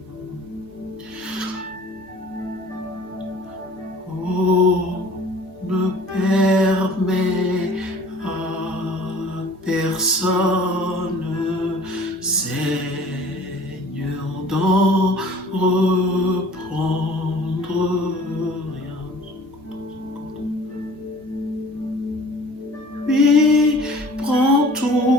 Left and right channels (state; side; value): normal; both; correlation 0.48